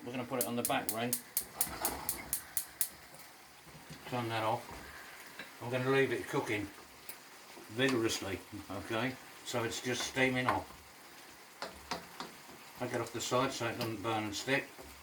we're going to put it on the back ring. Turn that off. I'm going to leave it cooking vigorously, okay? So it's just steaming off. Take it off the side so it doesn't burn and stick.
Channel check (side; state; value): both; identical; correlation 1.00